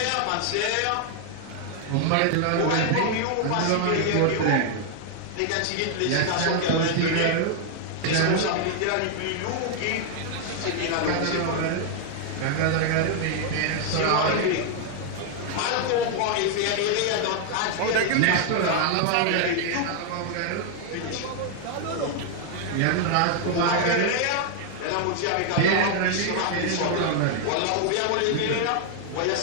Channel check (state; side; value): different; both; correlation 0.00